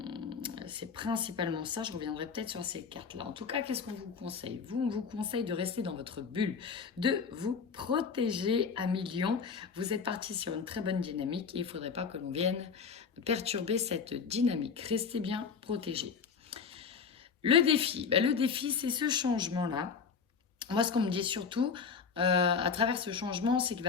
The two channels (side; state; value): right; quieter; 5.8 dB